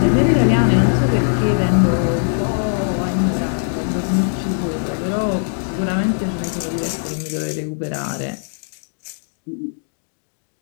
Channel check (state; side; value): silent; right; digital silence